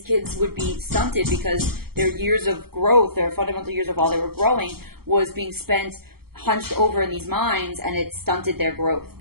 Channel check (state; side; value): late; left; 0.95 ms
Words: kids would be stunted because their years of growth, their fundamental years of while they were growing, was being spent hunched over in these mines, and it stunted their growth.